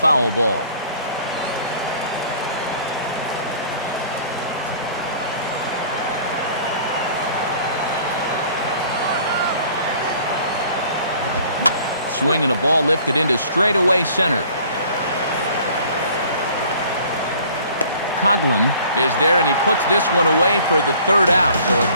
ball. Swing and a ball lifted into straightaway center. Coughlin is there, and he puts this one away for the 3rd out. So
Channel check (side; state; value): both; inverted; correlation -0.52